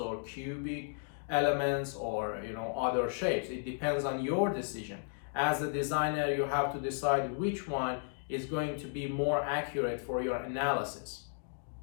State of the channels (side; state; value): right; silent; digital silence